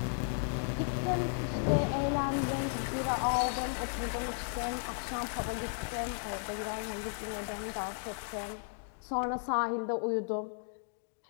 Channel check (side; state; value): right; silent; digital silence